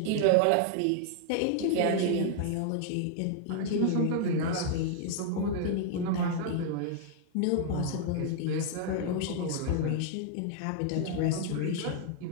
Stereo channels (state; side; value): different; both; correlation 0.00